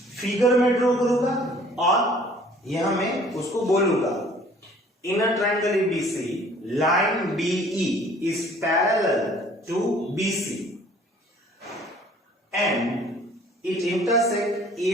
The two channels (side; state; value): both; normal; correlation 0.54